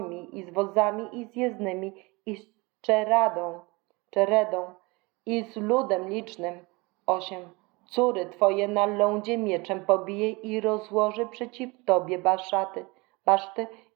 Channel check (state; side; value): quieter; left; 25.6 dB